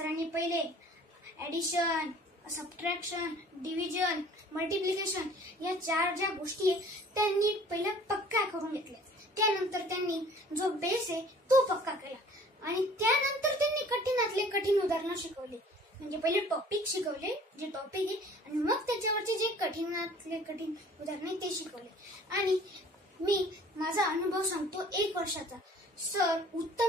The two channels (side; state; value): both; normal; correlation 0.51